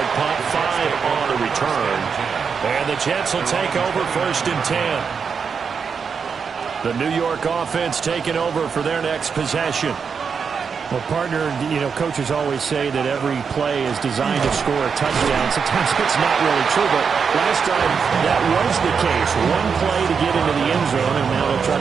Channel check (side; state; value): left; quieter; 6.1 dB